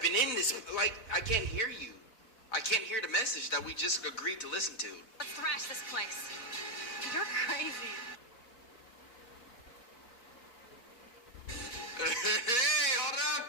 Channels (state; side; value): late; right; 4.3 ms